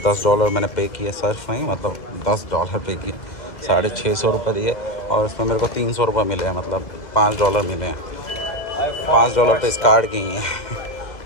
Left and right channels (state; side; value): late; right; 2.0 ms